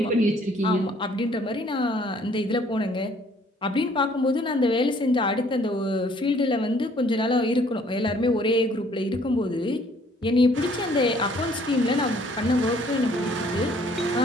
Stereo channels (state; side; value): normal; both; correlation 0.60